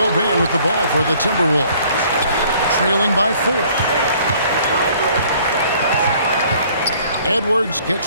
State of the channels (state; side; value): inverted; both; correlation -0.57